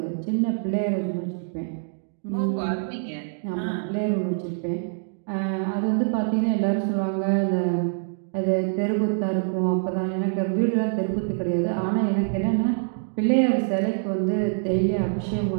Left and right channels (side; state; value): left; silent; digital silence